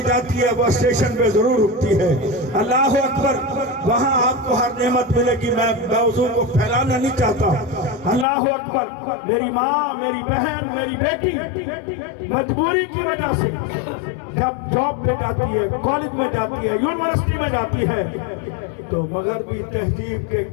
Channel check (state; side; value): drops out; right; at 8.2 s